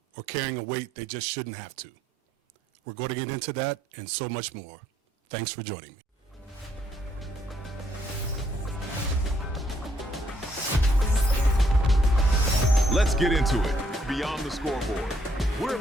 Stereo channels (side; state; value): both; normal; correlation 0.71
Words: or carrying a weight they just shouldn't have to? We're going to get into that and so much more. Thanks for joining me. Let's get into it. Beyond the Scoreboard. We're